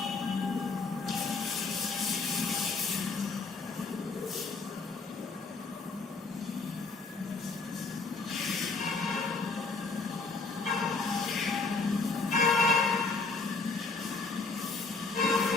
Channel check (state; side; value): quieter; right; 4.0 dB